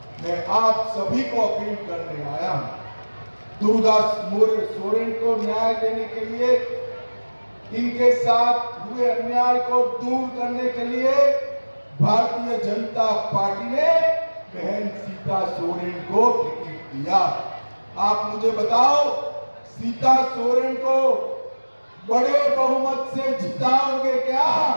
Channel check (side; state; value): both; inverted; correlation -1.00